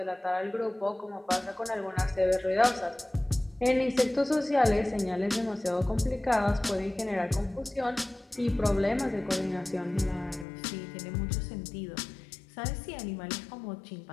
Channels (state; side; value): drops out; right; at 10.5 s